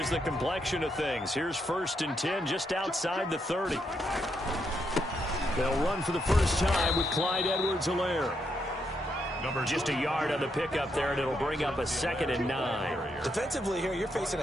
the complexion of things. Here's 1st and 10 just outside the 30. They'll run for the first time with Clyde Edwards-Helaire. Just a yard on the pickup there, and it'll bring up a 2nd and 9. Defensively here, you're facing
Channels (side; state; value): both; normal; correlation 0.79